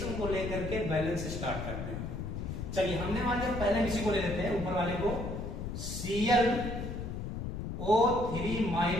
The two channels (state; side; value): noise; left; rumble, 5 dB below the sound